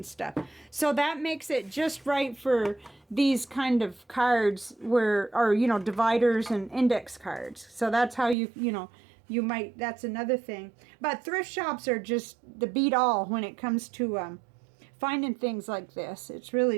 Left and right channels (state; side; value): drops out; left; at 8.3 s